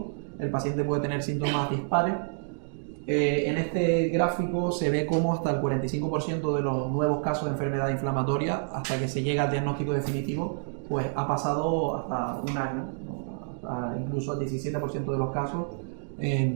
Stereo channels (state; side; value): silent; left; digital silence